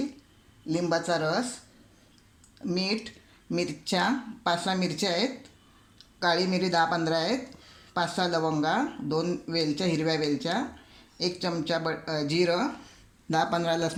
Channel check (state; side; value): identical; both; correlation 1.00